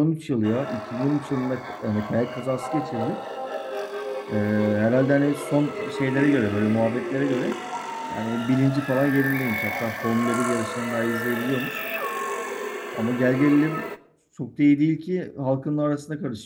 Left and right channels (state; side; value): identical; both; correlation 1.00